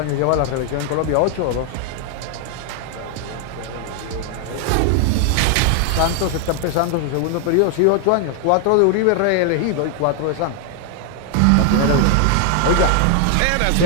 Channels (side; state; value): both; different; correlation 0.00